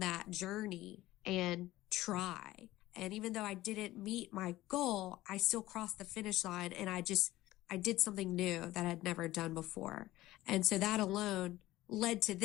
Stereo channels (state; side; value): quieter; right; 16.7 dB